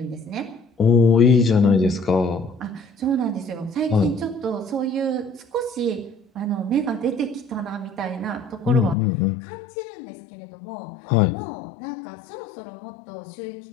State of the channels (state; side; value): drops out; right; at 9.0 s